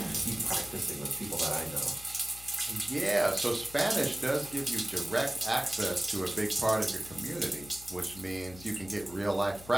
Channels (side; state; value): left; noise; hum, 18 dB below the sound